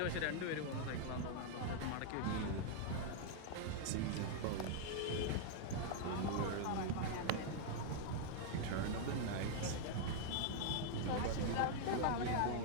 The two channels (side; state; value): both; different; correlation 0.00